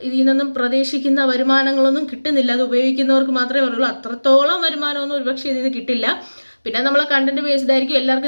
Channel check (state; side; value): inverted; both; correlation -1.00